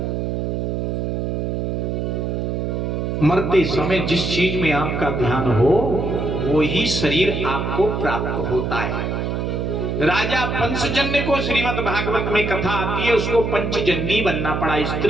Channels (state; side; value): noise; right; hum, 1 dB below the sound